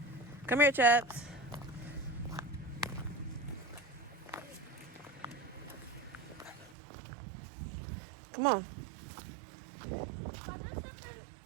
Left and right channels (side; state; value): left; drops out; at 6.8 s